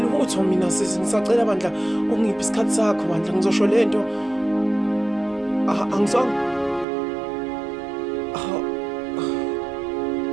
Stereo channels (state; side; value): drops out; left; at 6.9 s